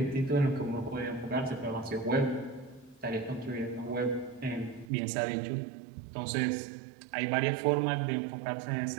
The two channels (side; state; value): left; drops out; at 4.9 s